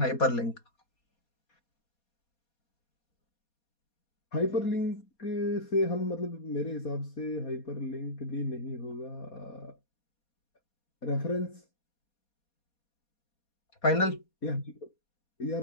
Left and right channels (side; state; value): right; late; 4.2 ms